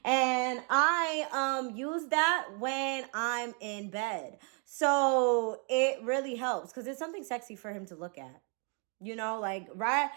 And I use that when I'm in bed. So it really helps because it's something sexy for him to look at. You know, like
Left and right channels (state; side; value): quieter; left; 38.1 dB